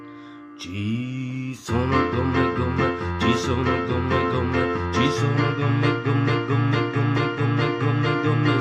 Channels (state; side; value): identical; both; correlation 1.00